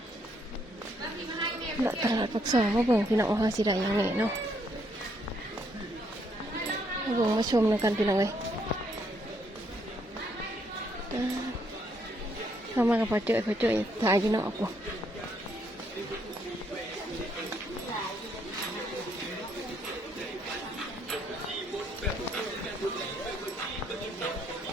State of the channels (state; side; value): normal; both; correlation 0.72